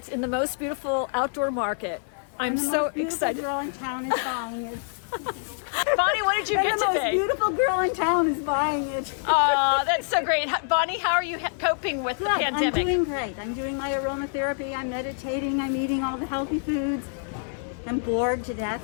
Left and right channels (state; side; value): silent; right; 61 dB below the other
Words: in the most beautiful outdoor market. I'm so excited. The most beautiful girl in town is buying it. Bonnie, what did you get The most today? beautiful girl in town is buying it. Oh, that's so great. Bonnie, how are you coping with the Good. pandemic? I'm doing great. I'm doing my aromatherapy. I'm meditating. I'm eating all the healthy foods. I'm bored to death.